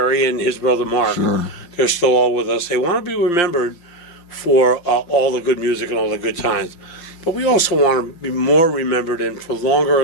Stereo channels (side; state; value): right; late; 5.8 ms